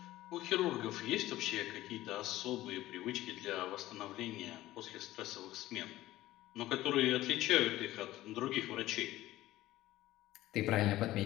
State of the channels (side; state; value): right; quieter; 15.8 dB